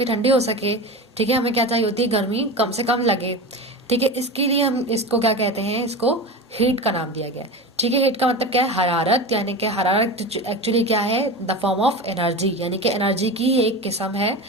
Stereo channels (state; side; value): normal; both; correlation 0.27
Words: ठंडी हो सके. ठीक है, हमें क्या चाहिए होती है, गर्मी कम से कम लगे. ठीक है, इसके लिए हम इसको क्या कहते हैं, इसको हीट का नाम दिया गया है. ठीक है, हीट का मतलब क्या है, हरारत. यानी कि हरारत एक्चुअली क्या है, द फॉर्म ऑफ एनर्जी, यानी कि एनर्जी की एक किस्म है.